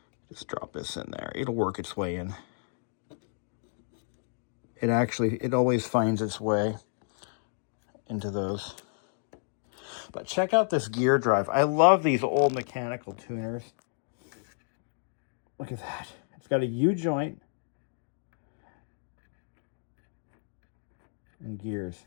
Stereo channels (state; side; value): silent; right; digital silence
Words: Just drop this in there. It'll work its way in. It always finds its way into those. But check out this gear drive. I love these old mechanical tuners. Look at that. It's got a U-joint and gears